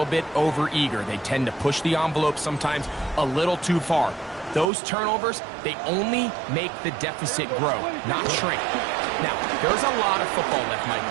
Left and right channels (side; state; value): left; drops out; at 4.7 s